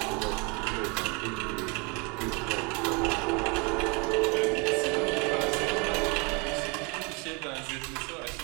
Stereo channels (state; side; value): quieter; left; 29.4 dB